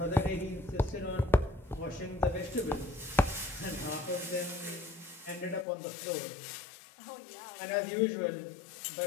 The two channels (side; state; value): right; drops out; at 5.7 s